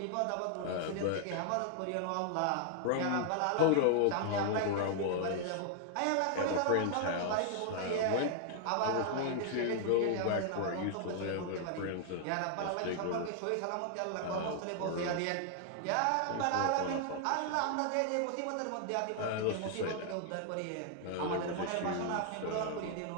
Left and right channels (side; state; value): both; different; correlation 0.00